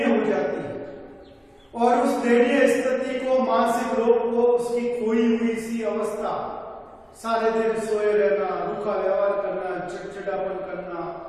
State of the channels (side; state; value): both; identical; correlation 1.00